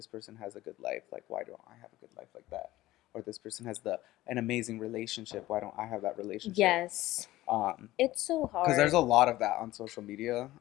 person has a good life. Like, why don't I have a good life like that? Or this person has an amazing relationship. Why don't I have that relationship? Yes. Um, It's so because there's hard. a lot of that on social media,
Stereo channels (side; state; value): right; quieter; 16.6 dB